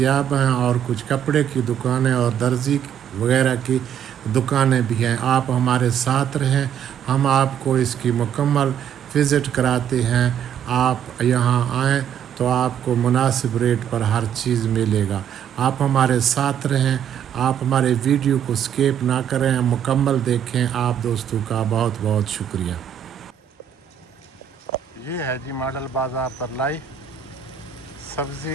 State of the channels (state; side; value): quieter; left; 9.1 dB